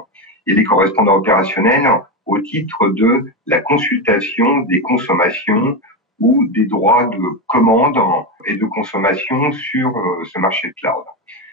Et les correspondants opérationnels au titre de la consultation des consommations ou des droits de commande et de consommation sur ce marché de cloud.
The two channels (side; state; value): both; normal; correlation 0.13